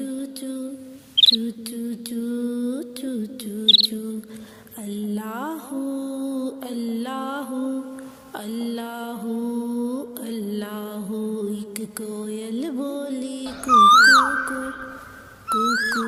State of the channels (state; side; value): identical; both; correlation 1.00